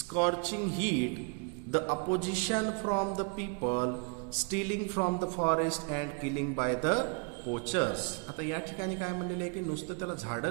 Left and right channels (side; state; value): left; quieter; 34.9 dB